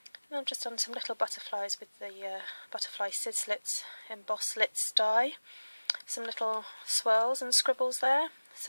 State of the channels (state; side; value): inverted; both; correlation -1.00